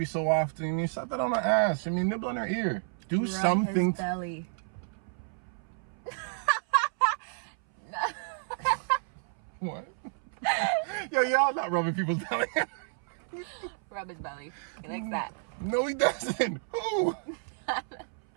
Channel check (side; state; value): left; silent; 57 dB below the other